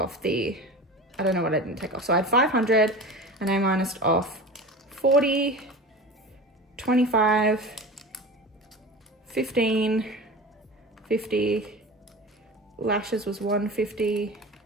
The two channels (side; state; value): both; normal; correlation 0.33